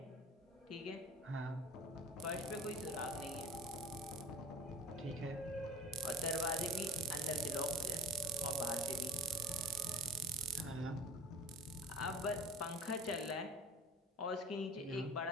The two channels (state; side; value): normal; both; correlation 0.39